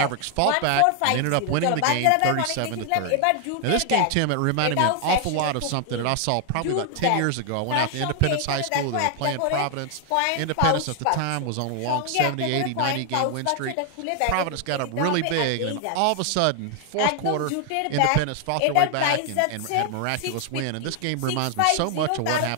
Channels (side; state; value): both; different; correlation 0.00